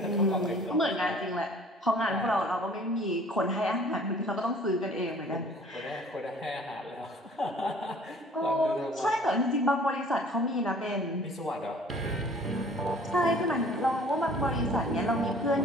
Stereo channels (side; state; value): both; normal; correlation 0.52